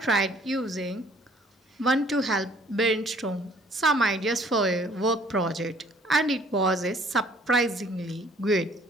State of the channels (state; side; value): normal; both; correlation 0.58